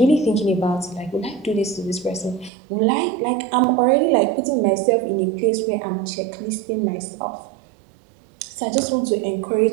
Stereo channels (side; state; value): left; drops out; at 2.5 s